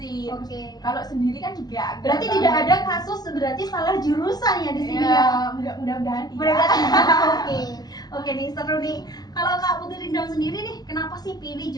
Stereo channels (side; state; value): right; late; 0.19 ms